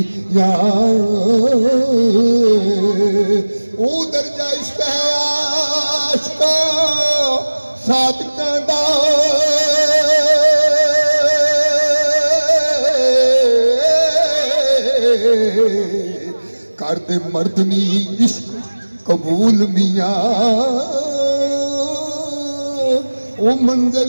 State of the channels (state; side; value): inverted; both; correlation -1.00